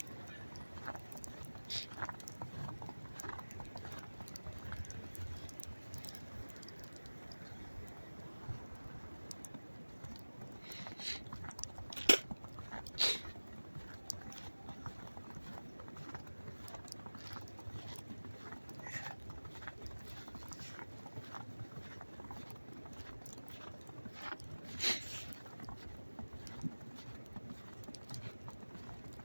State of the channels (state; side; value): inverted; both; correlation -1.00